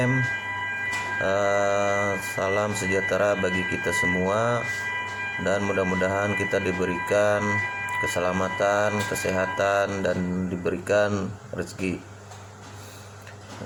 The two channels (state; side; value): identical; both; correlation 1.00